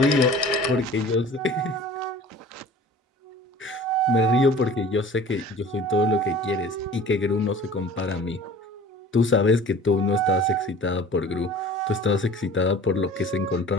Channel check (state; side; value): normal; both; correlation 0.45